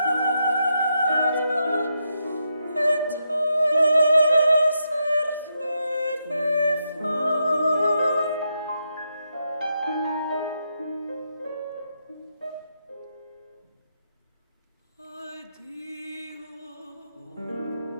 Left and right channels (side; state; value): both; inverted; correlation -0.82